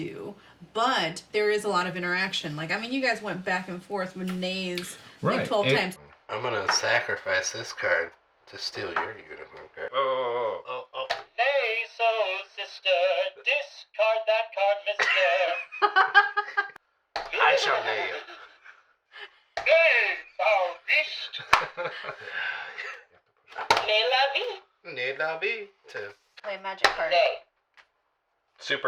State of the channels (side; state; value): both; identical; correlation 1.00